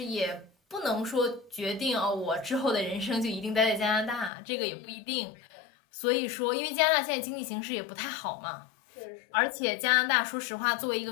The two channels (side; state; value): right; drops out; at 4.3 s